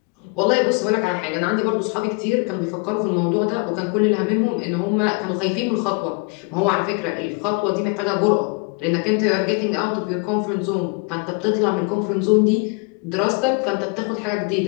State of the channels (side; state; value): right; quieter; 32.4 dB